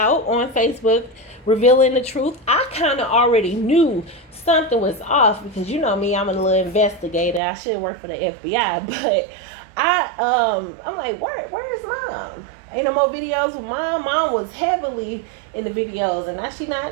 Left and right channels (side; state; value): left; drops out; at 7.4 s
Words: on Facebook, revealing the truth. I kind of already knew something was off because me, I'm a little investigator. I should work for the FBI, but I'm like, where is Mom? Ain't no more videos with Mom. Mom was heavily in the videos, and now she